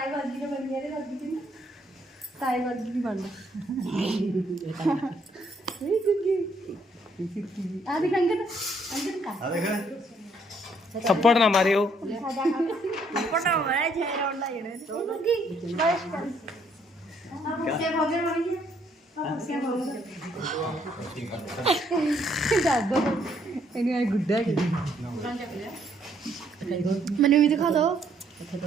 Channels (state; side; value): normal; both; correlation 0.68